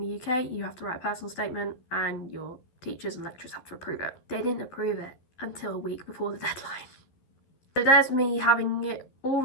UK, you have to write a personal statement, and your teachers and lecturers have to approve it. They didn't approve it until a week before the deadline. So there's me having it all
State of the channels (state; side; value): late; right; 12 ms